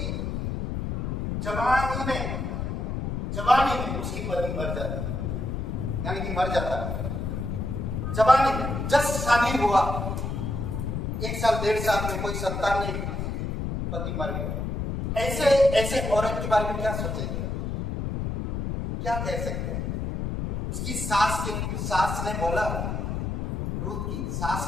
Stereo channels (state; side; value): noise; left; rumble, 3 dB below the sound